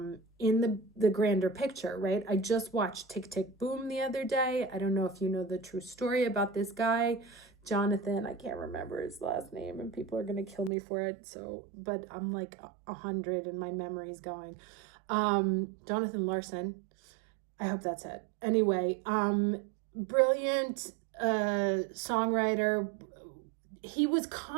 grander picture, right? I just watched Tick, Tick, Boom the other day. I don't know if you know the true story about this guy, Jonathan. I can't remember his last name and people are going to kill me for it. So, but I'm like 100 and my memory's going. Jonathan Larson. I hope that's it. Anyway, brilliant songwriter. He was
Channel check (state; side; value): drops out; left; at 10.7 s